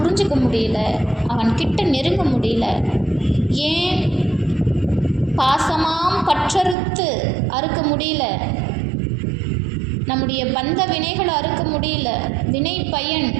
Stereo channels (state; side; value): drops out; left; at 6.8 s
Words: முடியல, அவன் கிட்ட நெருங்க முடியல. ஏன்? பாசமாம் பற்றறுத்து அறுக்க முடியல, நம்முடைய பந்த வினைகளை அறுக்க முடியல, வினை பயன்